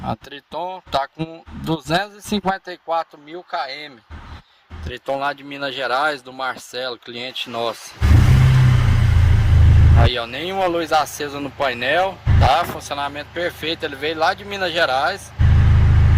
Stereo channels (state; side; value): identical; both; correlation 1.00